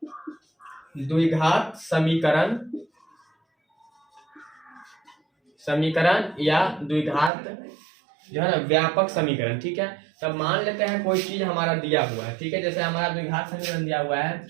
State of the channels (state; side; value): drops out; left; at 7.3 s